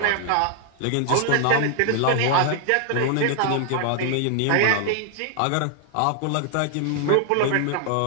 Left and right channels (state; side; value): different; both; correlation 0.00